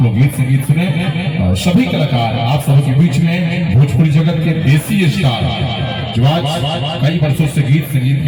लोग गीत संगीत सुने। और सभी कलाकार आप सबके बीच में भोजपुरी जगत के देसी स्टार जो आज कई वर्षों से गीत संगीत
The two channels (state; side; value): identical; both; correlation 1.00